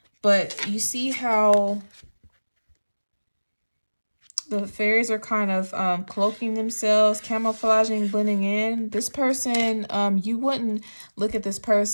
But you see how the fairies are kind of cloaking themselves, camouflaging, blending in. This person, you wouldn't look at this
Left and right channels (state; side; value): inverted; both; correlation -1.00